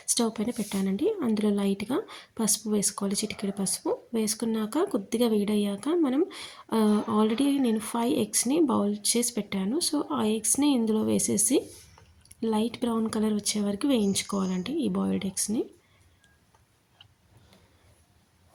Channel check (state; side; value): identical; both; correlation 1.00